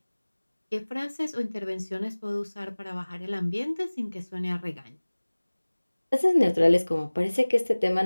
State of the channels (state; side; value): inverted; both; correlation -1.00